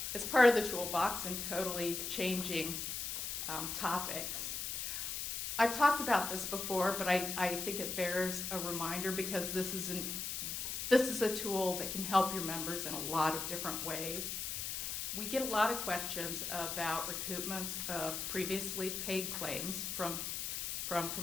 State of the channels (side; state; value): left; noise; hiss, 3 dB below the sound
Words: as part of the toolbox and totally changing topics, I've talked about this before, but I think it bears a reminder because this is a tool that can help your members in a lot of different ways. We get a lot of questions about recoupments of previously paid claims from